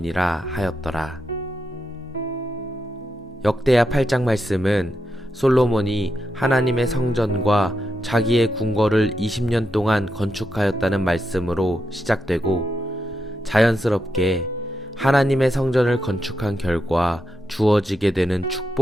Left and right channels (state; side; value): normal; both; correlation 0.85